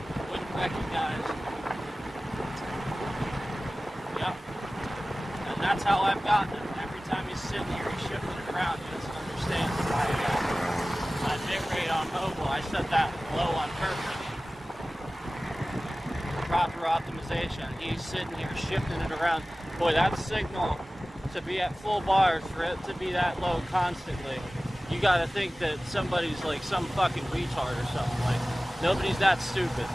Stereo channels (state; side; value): normal; both; correlation 0.97